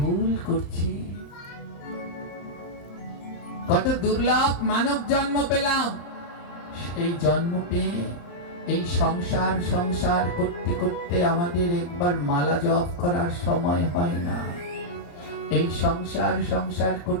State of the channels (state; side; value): late; right; 34 ms